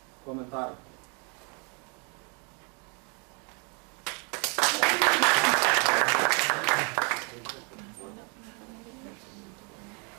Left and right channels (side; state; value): left; quieter; 35.5 dB